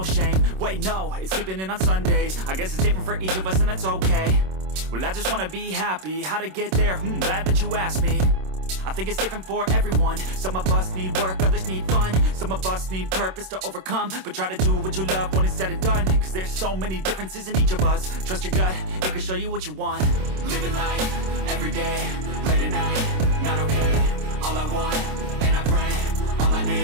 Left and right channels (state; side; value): late; left; 26 ms